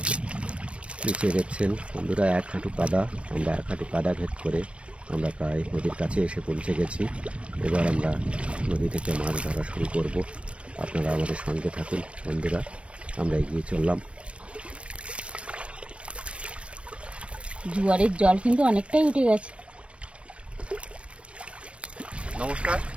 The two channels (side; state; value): left; late; 0.061 ms